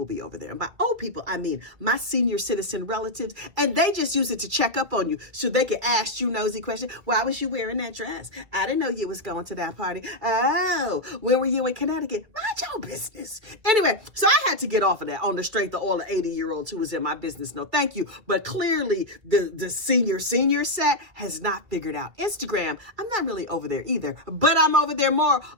be over there. And by old people, I mean my senior citizen relatives, and they just use it to check up on you so they can ask you nosy questions. Why was you wearing that dress? I didn't know you was going to that party. Oh, when were you in Connecticut? Mind your business. Anyway, so I had to get off of that on the strength of all the 80-year-olds who was in my business. No, thank you. But clearly the senior set has not figured out Instagram. I'm not really over there either, but I'm over there more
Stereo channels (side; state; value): left; late; 2.0 ms